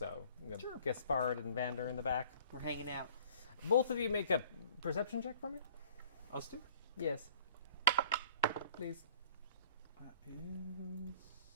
Sure. Gaspard and Vander in the back. We're hanging out. Both of you make a perception check for me? Us two? Yes. Please. That is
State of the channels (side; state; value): both; inverted; correlation -0.51